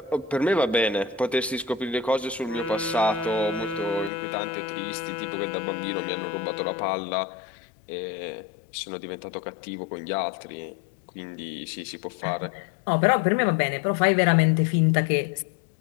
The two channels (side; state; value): right; drops out; at 4.1 s